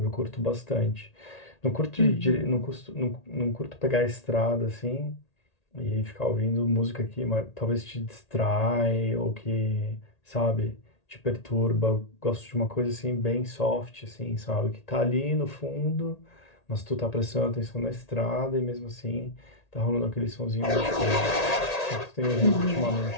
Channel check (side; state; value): right; late; 1.8 ms